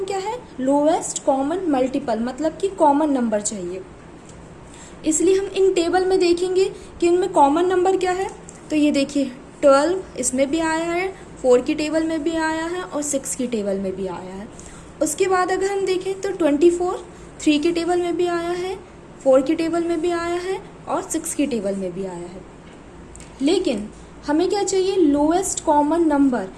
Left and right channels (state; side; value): identical; both; correlation 1.00